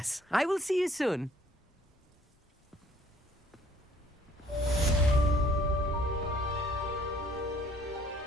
I will see you soon.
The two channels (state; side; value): normal; both; correlation 0.60